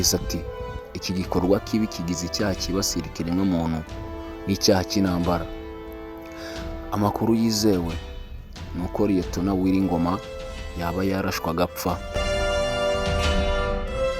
ati, iki gikorwa kibi kigize icyaha kibasira ikiremwamuntu n'icyaha cy'intambara. Amakuru yizewe nuko Liyetona Wiringoma yaba yarashwe agapfa.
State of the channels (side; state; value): both; identical; correlation 1.00